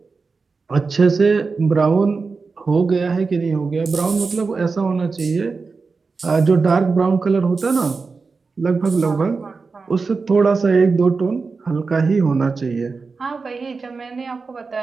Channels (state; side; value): quieter; left; 4.5 dB